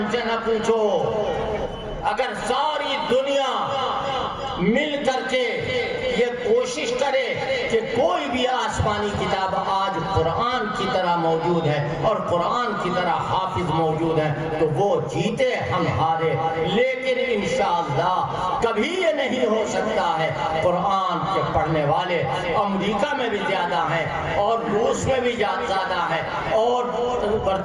سے نہ پوچھو. اگر ساری دنیا مل کر کے یہ کوشش کرے کہ کوئی بھی آسمانی کتاب آج قرآن کی طرح موجود ہے اور قرآن کی طرح حافظ موجود ہے, تو وہ جیتے ہم ہارے. لیکن انشاءاللہ کبھی یہ نہیں ہو سکتا ہے. قرآن کے پڑھنے والے امریکہ میں بھی زیادہ ہیں, اور روس میں بھی زیادہ ہیں, اور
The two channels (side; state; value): both; identical; correlation 1.00